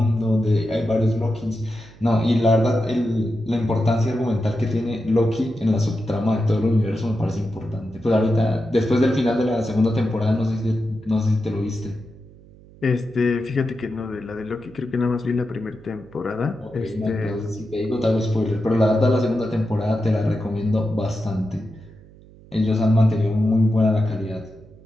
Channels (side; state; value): right; noise; hum, 23 dB below the sound